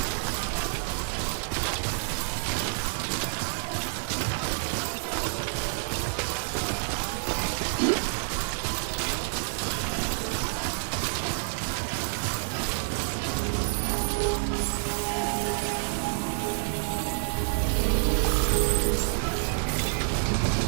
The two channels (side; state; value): left; silent; digital silence